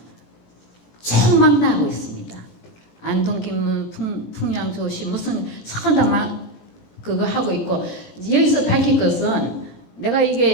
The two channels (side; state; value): right; late; 17 ms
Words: 총 나고 있습니다. 안동김문, 풍양조시 무슨 천다만 그거 하고 있고 여기서 밝힐 것은 내가